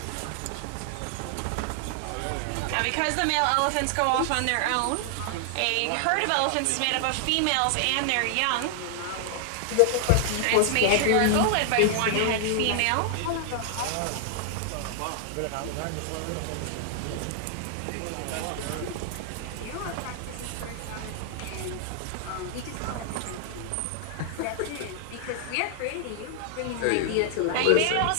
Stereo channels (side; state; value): both; different; correlation 0.00